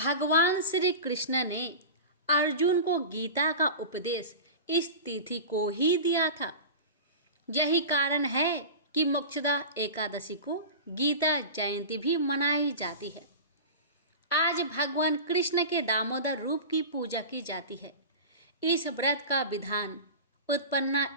श्री कृष्ण ने अर्जुन को गीता का उपदेश इस तिथि को ही दिया था। यही कारण है कि मोक्षदा एकादशी को गीता जयंती भी मनाई जाती है। आज भगवान कृष्ण के दामोदर रूप की पूजा की जाती है। इस व्रत का विधान उत्पन्ना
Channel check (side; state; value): both; inverted; correlation -0.30